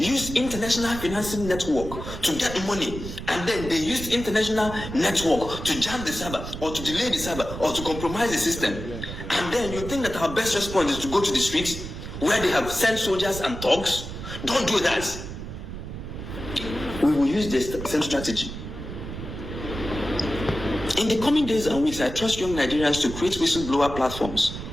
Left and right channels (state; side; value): noise; right; rumble, 9 dB below the sound